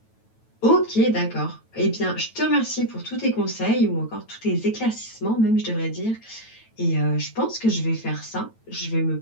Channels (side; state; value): right; late; 9.1 ms